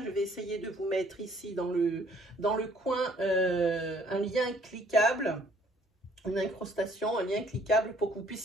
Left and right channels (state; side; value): normal; both; correlation 0.61